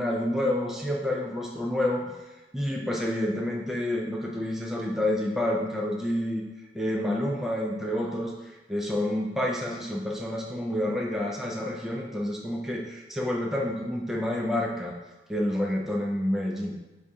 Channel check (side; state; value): both; normal; correlation 0.80